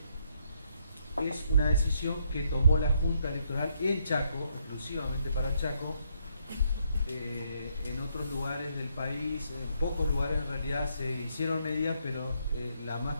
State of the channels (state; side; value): inverted; both; correlation -0.73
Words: es una decisión que tomó la Junta Electoral en Chaco, exclusivamente para Chaco. En otros lugares del país, en pocos lugares en realidad se hicieron medidas, pero la más